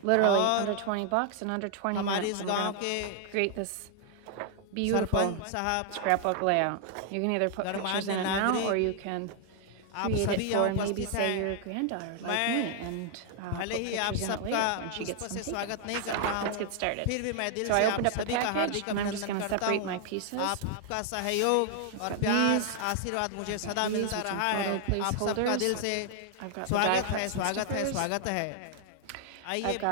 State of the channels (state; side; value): different; both; correlation 0.00